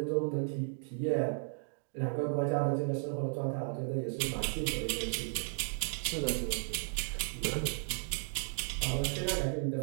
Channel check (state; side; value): silent; left; digital silence